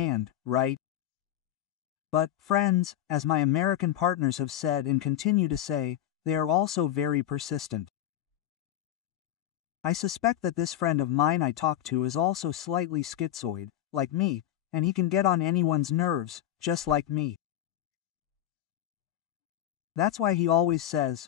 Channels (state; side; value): quieter; right; 12.2 dB